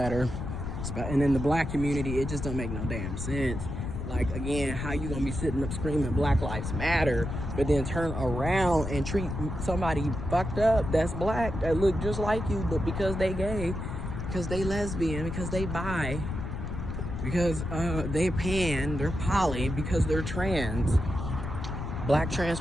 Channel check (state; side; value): noise; left; rumble, 5 dB below the sound